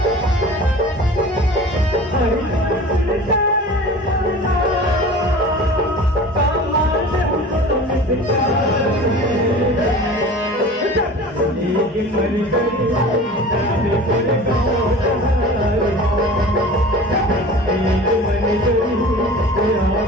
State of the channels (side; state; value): both; normal; correlation 0.39